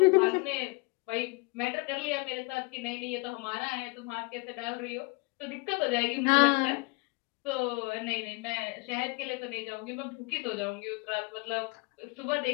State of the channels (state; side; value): quieter; right; 28.6 dB